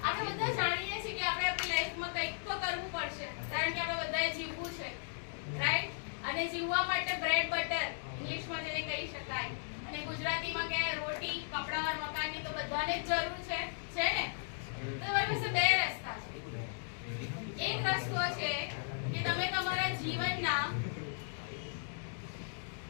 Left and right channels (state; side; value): silent; right; digital silence